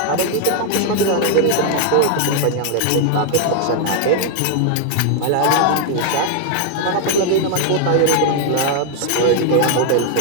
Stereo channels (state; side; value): different; both; correlation 0.00